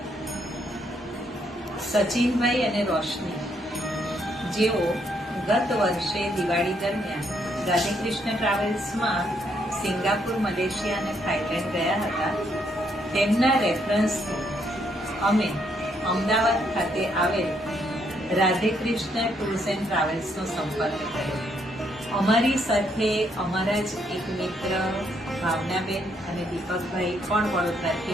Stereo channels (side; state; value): both; normal; correlation 0.73